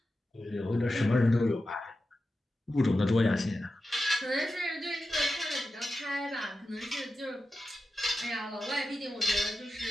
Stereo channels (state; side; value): normal; both; correlation 0.92